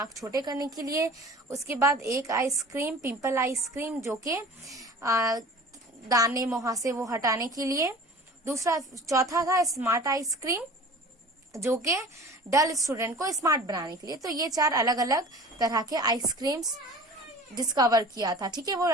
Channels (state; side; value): normal; both; correlation 0.42